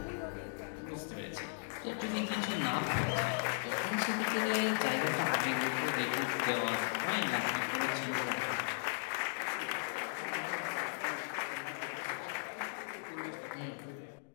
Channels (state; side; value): silent; right; digital silence